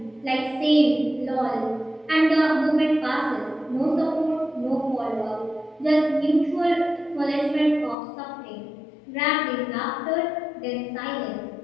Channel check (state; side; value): drops out; right; at 8.0 s